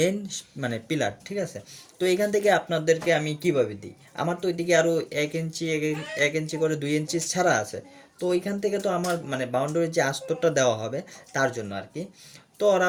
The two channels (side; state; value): both; identical; correlation 1.00